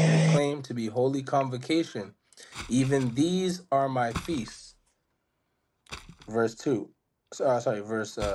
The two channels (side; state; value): both; identical; correlation 1.00